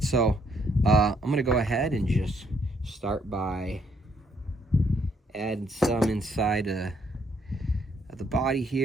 so I'm going to go ahead and just start by adding some inside of the body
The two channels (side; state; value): both; normal; correlation 0.70